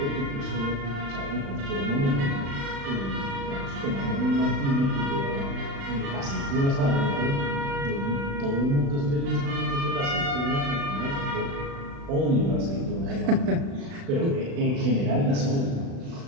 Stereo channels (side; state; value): left; late; 36 ms